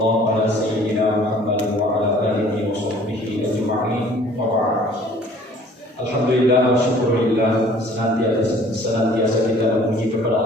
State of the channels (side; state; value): both; normal; correlation 0.53